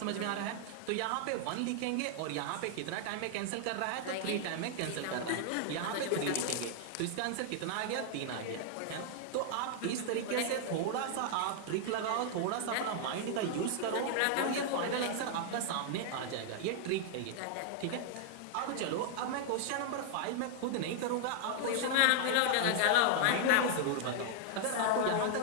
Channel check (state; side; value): different; both; correlation -0.01